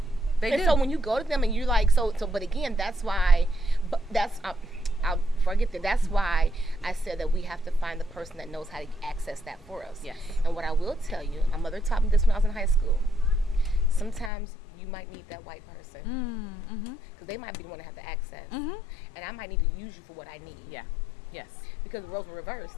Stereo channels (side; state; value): right; drops out; at 14.3 s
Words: So when you go to them and you're like, but again, that's why, I'll forget that. That's why I said that we have to find the person that knows how to access that for us. Yes. And what I will tell you, my mother taught me this when I was in high school. Sometimes you might need that white person because they might be the one to have the access, and I might need to use you for what I need. Yeah. Yes. Because the roles were reversed.